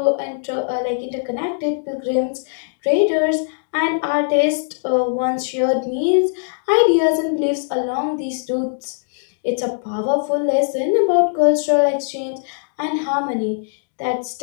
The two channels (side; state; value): right; silent; digital silence